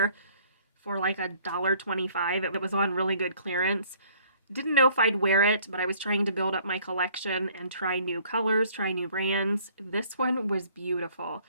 for like $1.25. It was on really good clearance. Didn't know if I'd wear it, but I was trying to build up my collection and try new colors, try new brands. This one was beautiful.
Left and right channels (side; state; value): both; inverted; correlation -0.58